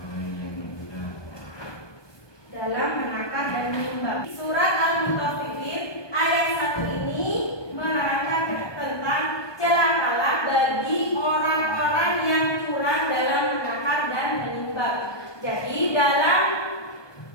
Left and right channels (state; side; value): late; right; 1.2 ms